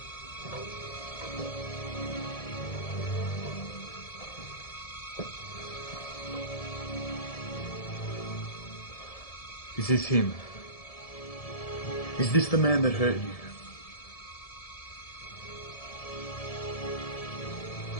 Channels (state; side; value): late; right; 1.7 ms